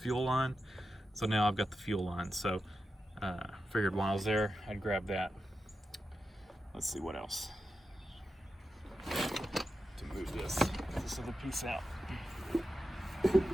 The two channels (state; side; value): normal; both; correlation 0.90